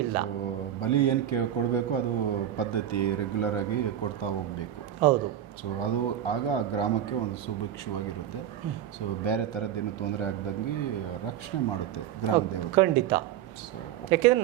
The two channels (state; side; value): quieter; left; 10.8 dB